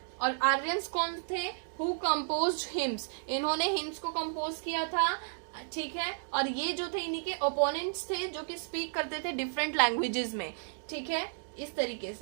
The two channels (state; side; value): silent; left; digital silence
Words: और आर्यंस कौन थे? हु कंपोज्ड हिम्स, इन्होंने हिम्स को कंपोज किया था, ठीक है. और ये जो थे इन्हीं के ओपोनेंट्स थे जो कि स्पीक करते थे डिफरेंट लैंग्वेजेस में, ठीक है, इस तरीके